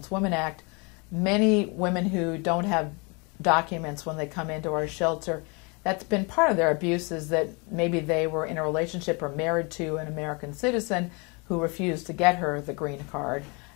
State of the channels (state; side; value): quieter; right; 30.9 dB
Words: Women Act, many women who don't have documents when they come into our shelter, that's been part of their abuse, is that maybe they were in a relationship or married to an American citizen who refused to get her the green card,